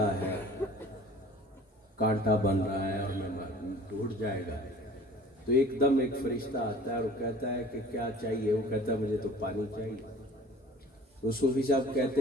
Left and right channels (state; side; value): normal; both; correlation 0.47